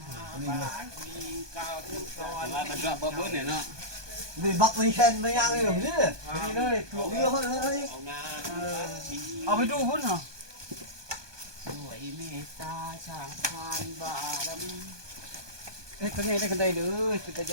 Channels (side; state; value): left; late; 1.2 ms